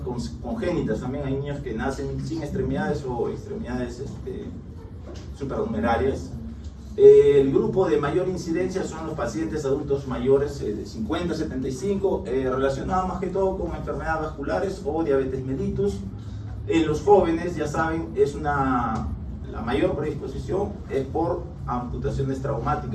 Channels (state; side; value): identical; both; correlation 1.00